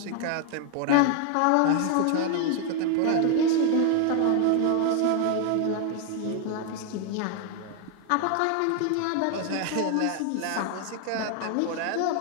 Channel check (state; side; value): different; both; correlation 0.00